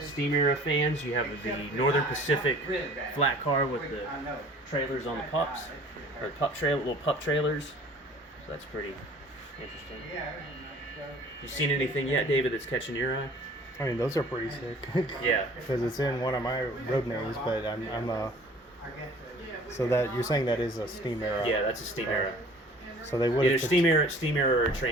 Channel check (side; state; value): both; normal; correlation 0.50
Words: era fans, you have the Northern Pacific flat car with the trailers on the pups, or little pup trailers. So that's pretty interesting. You seen anything yet, David, that's catching your eye? I mean, those are pretty sick. Yeah. Because it's in one of my road names, but I'm so that you're saying that is a steam era. Yeah, that's a steam era. So they would either steam era or